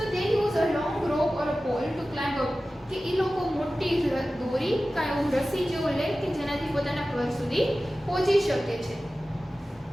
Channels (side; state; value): both; normal; correlation 0.95